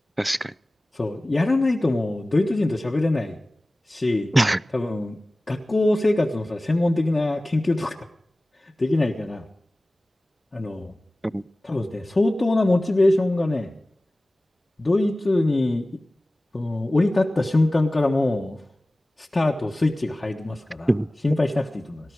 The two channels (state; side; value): normal; both; correlation 0.97